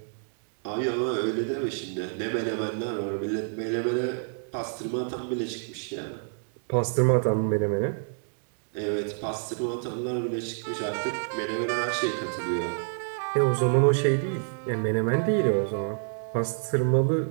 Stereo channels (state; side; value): silent; left; digital silence